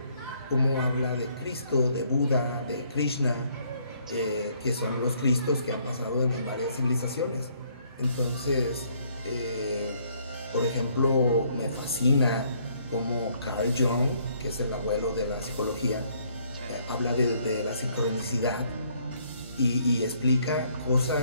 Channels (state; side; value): inverted; both; correlation -0.66